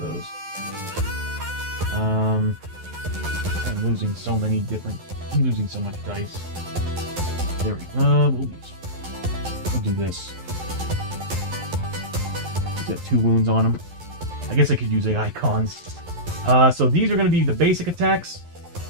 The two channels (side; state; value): left; late; 11 ms